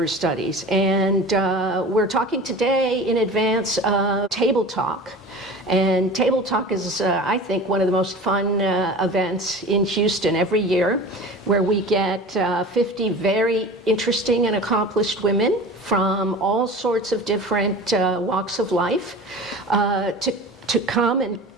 Studies. And we're talking today in advance of Table Talk. And Table Talk is, I think, one of the most fun events in Houston every year, where we get 50 very interesting and accomplished women from all sorts of different walks of life to come and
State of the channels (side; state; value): both; normal; correlation 0.36